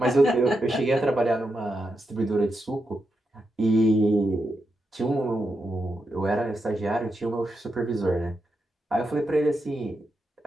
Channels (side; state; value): both; normal; correlation 0.86